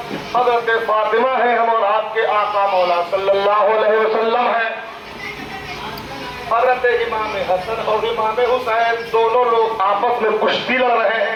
حضرت فاطمہ ہیں ہم اور آپ کے آقا مولا صلی اللہ علیہ وسلم ہیں۔ حضرت امام حسن اور امام حسین دونوں لوگ آپس میں کشتی لڑ رہے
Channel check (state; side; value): identical; both; correlation 1.00